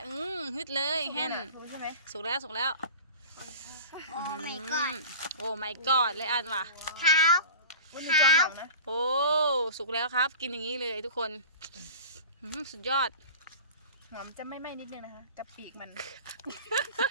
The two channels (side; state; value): both; inverted; correlation -0.38